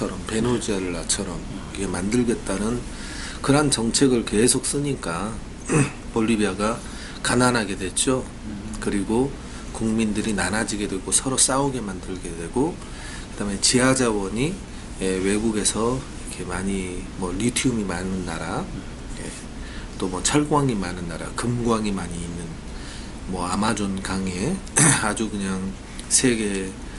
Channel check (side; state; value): both; identical; correlation 1.00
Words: 베네수엘라처럼 이게 만들겠다는 그런 정책을 계속 쓰니까 볼리비아가 가난하게 됐죠. 그리고 국민들이 나눠지게 되고 서로 싸우게 만들게 되고 그다음에 지하 자원이 외국에서 이렇게 많이 뭐 리튬이 많은 나라, 또 뭐 철광이 많은 나라, 금광이 많이 있는 뭐 아마존 강에 아주 그냥 세계